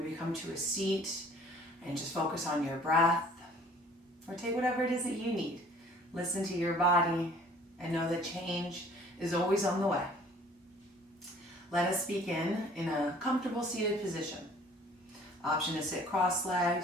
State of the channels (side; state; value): both; normal; correlation 0.53